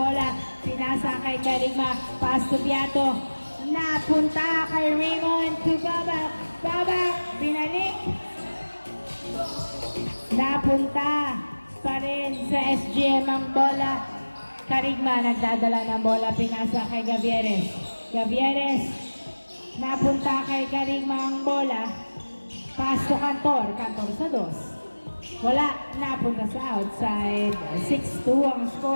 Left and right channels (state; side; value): inverted; both; correlation -1.00